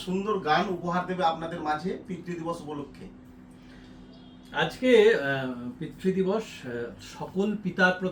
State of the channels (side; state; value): both; identical; correlation 1.00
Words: সুন্দর গান উপহার দেবে আপনাদের মাঝে পিতৃদিবস উপলক্ষে। আজকে পিতৃদিবস, সকল পিতার